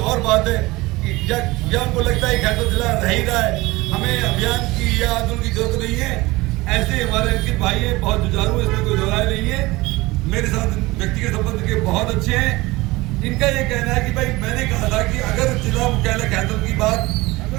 और बात है या उनको लगता है खैरतल जिला रह ही रहा है, हमें अभियान की या आंदोलन की जरूरत नहीं है। ऐसे हमारे अंकित भाई है, बहुत जुझारू, इसमें कोई दोहराए नहीं है, मेरे साथ व्यक्तिगत संबंध के बहुत अच्छे हैं। इनका ये कहना है कि भाई मैंने कहा था कि अगर जिला मुख्यालय खैरतल की बात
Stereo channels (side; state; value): left; quieter; 21.0 dB